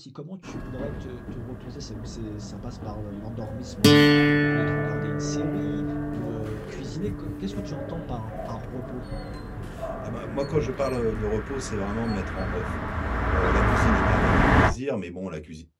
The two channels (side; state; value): both; identical; correlation 1.00